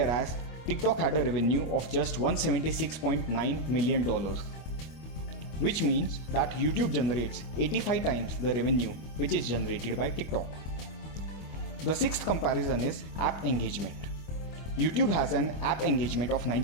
TikTok had a revenue of just $176.9 million, which means that YouTube generates 85 times the revenue which is generated by TikTok. The sixth comparison is app engagement. YouTube has an app engagement of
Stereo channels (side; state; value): right; late; 25 ms